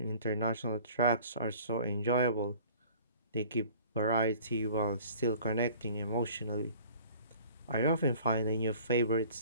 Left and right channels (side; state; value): both; inverted; correlation -0.49